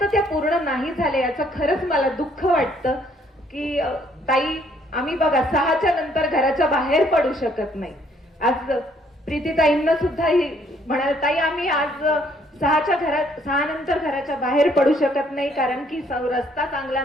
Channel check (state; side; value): normal; both; correlation 0.65